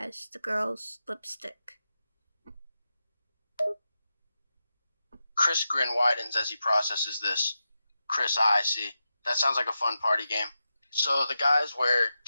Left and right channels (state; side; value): inverted; both; correlation -0.90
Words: the girl's lipstick. Chris' grin widens as he processes this. Chris, I see. That sounds like a fun party game. So the guys wear